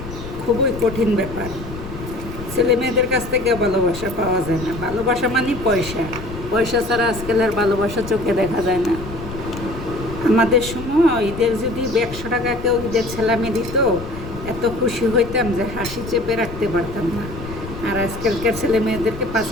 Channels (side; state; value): left; noise; rumble, 11 dB below the sound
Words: খুবই কঠিন ব্যাপার। ছেলে মেয়েদের কাছ থেকে ভালোবাসা পাওয়া যায় না। ভালোবাসা মানে পয়সা। পয়সা ছাড়া আজকাল আর ভালোবাসা চোখে দেখা যায় না। আমাদের সময় ঈদের যদি 100 টাকা কেউ ঈদের ছেলামি দিত, এত খুশি হইতাম যে হাসি চেপে রাখতে পারতাম না। আর আজকালকার ছেলে মেয়েদেরকে